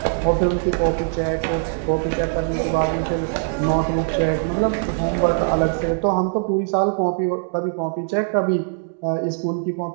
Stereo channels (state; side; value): silent; left; digital silence